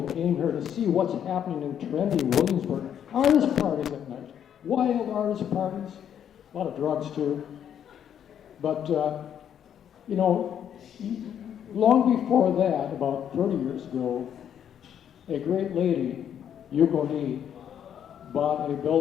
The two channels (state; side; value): quieter; right; 9.2 dB